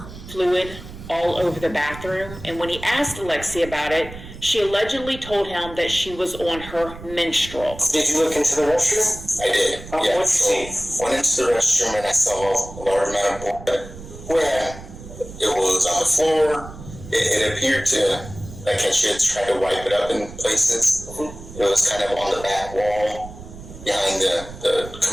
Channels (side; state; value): right; noise; rumble, 14 dB below the sound